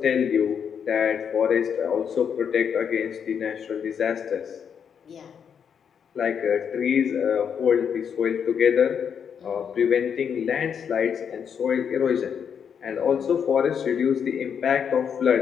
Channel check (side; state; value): right; quieter; 7.5 dB